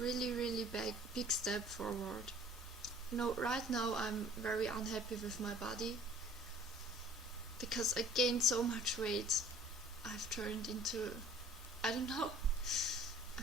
really big step forward. Right now I'm very unhappy with my body, because I gained so much weight. I've turned into a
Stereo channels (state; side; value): normal; both; correlation 0.50